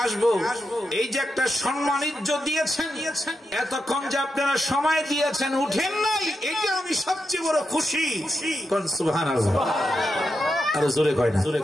আসবো, এই যে একটা সম্মান ইজ্জত দিয়েছেন, এতক্ষণ যে আপনারা সময় দিয়েছেন, উঠেন নাই, এটা আমি সবচেয়ে বড় খুশি। কোন সুবহানাল্লাহ। আর জোরে কয় না,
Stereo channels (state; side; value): normal; both; correlation 0.86